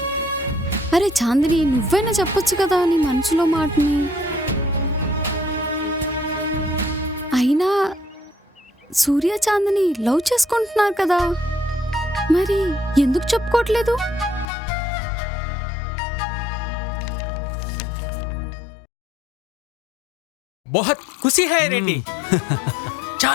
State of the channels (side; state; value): right; drops out; at 14.5 s